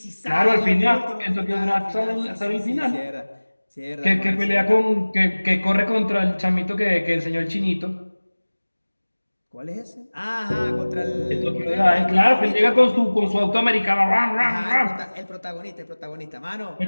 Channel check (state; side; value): inverted; both; correlation -1.00